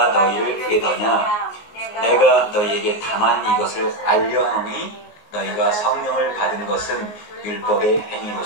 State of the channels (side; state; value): right; late; 19 ms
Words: 너희를 깨더냐. 내가 너희에게 다만 이것을 알려하노니 너희가 성령을 받은 것은 율법의